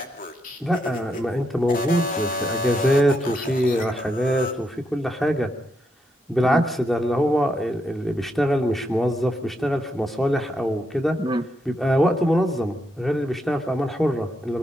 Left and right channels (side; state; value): both; normal; correlation 0.81